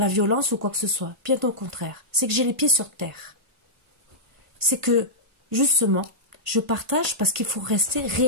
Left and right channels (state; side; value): late; left; 1.5 ms